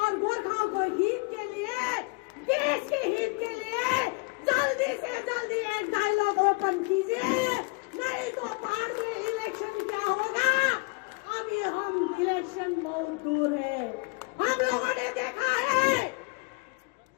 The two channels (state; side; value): quieter; right; 30.0 dB